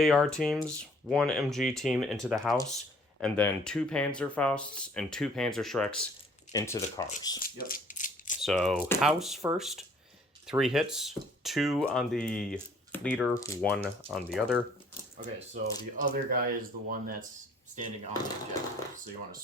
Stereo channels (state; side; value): normal; both; correlation 0.58